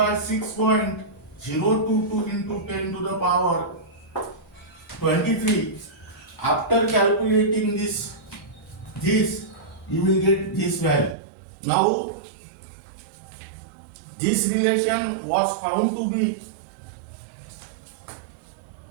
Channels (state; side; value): drops out; left; at 11.2 s